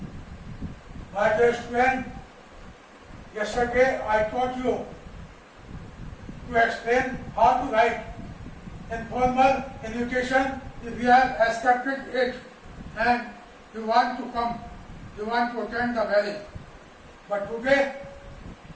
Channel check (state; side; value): identical; both; correlation 1.00